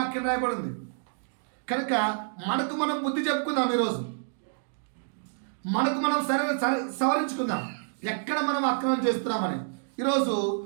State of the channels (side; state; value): left; silent; digital silence